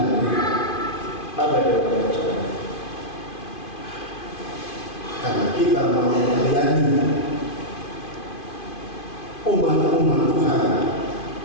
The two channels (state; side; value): late; right; 2.5 ms